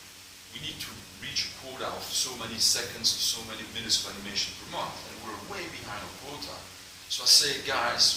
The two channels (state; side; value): identical; both; correlation 1.00